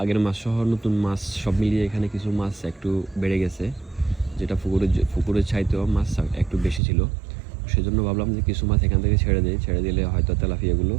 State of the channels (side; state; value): left; drops out; at 6.8 s